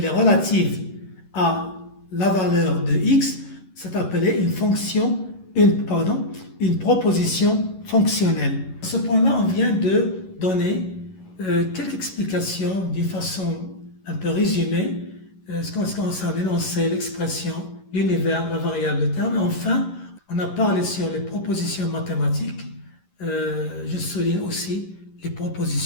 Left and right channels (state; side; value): late; right; 11 ms